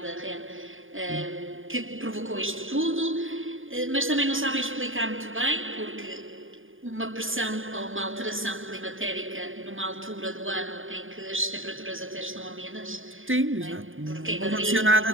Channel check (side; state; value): left; late; 0.58 ms